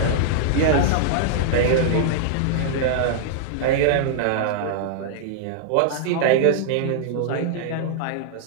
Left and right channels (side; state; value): both; different; correlation -0.01